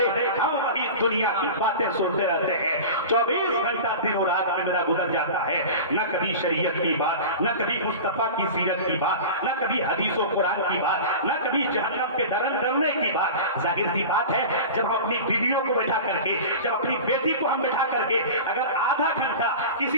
हम वही दुनिया की बातें सुनते रहते हैं, 24 घंटा दिनों रात में मेरा गुजर जाता है, न कभी शरीयत की बात, न कभी मुस्तफा की सीरत की बात, न कभी हदीसों कुरान की बात, न कभी जहन्नम के डरने की बात। जाहिर सी बात है, जब हम अपनी बीवियों को बैठा करके, जब अपनी बेटी को हम बैठा करके अगर आधा घंटा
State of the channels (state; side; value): inverted; both; correlation -0.32